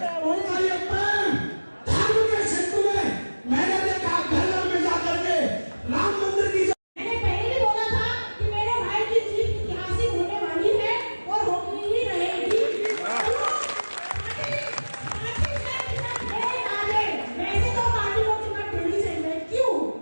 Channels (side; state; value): both; inverted; correlation -1.00